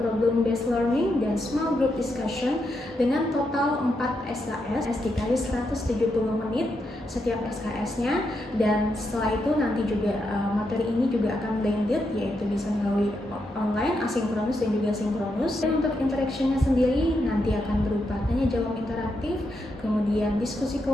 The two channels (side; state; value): both; normal; correlation 0.83